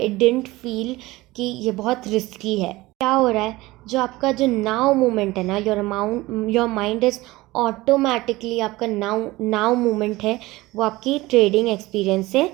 इट डिडंट फील कि ये बहुत रिस्की है। क्या हो रहा है? जो आपका जो नाउ मोमेंट है ना, योर माइंड इज ऑटोमेटिकली, आपका नाउ मोमेंट है वो आपकी ट्रेडिंग एक्सपीरियंस से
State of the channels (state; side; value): quieter; left; 19.6 dB